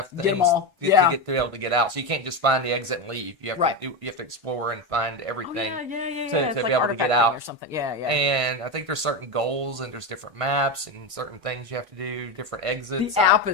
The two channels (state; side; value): late; left; 1.5 ms